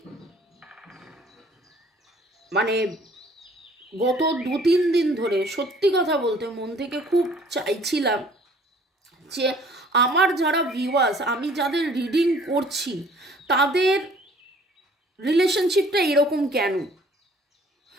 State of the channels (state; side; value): normal; both; correlation 0.55